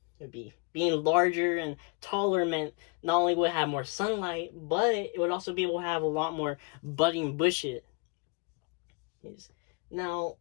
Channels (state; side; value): quieter; right; 30.8 dB